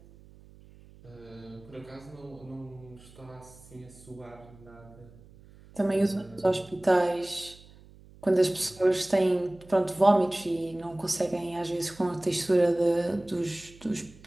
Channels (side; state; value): right; noise; hum, 23 dB below the sound